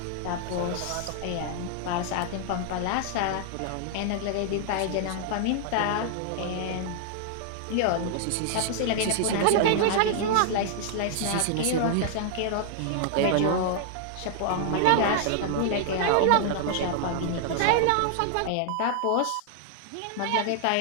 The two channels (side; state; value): both; different; correlation 0.00